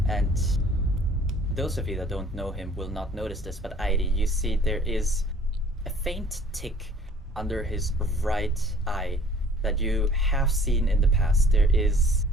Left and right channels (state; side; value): normal; both; correlation 0.54